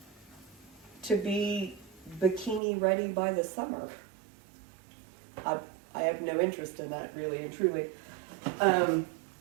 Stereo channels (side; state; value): left; drops out; at 2.6 s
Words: to be bikini ready by the summer. I have no interest in that, really and truly.